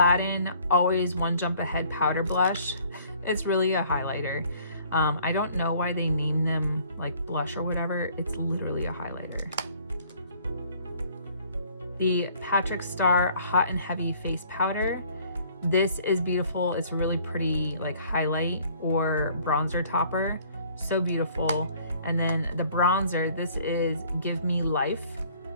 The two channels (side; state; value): both; inverted; correlation -0.57